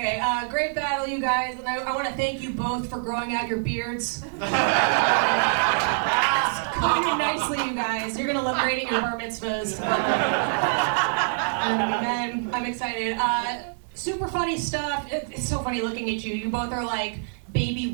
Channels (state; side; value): silent; left; digital silence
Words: great battle, you guys, and I want to thank you both for growing out your beards. It's coming in nicely, you guys. You're going to look great at your bar mitzvahs. I'm excited. Super funny stuff. It's so funny looking at you. You both are like baby